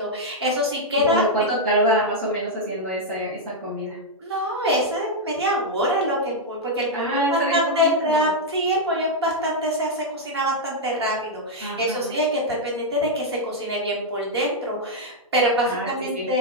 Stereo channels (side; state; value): both; normal; correlation -0.02